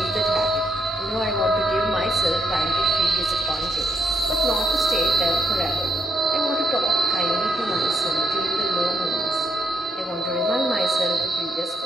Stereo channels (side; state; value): both; normal; correlation 0.74